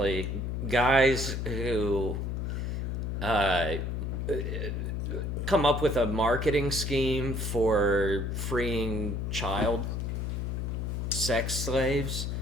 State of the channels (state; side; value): noise; left; hum, 2 dB below the sound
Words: guys who come up with a marketing scheme for freeing child sex slaves